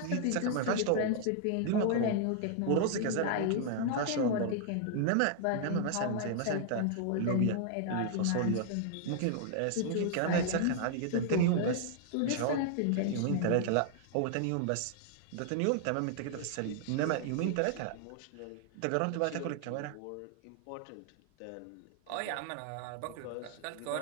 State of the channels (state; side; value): different; both; correlation 0.00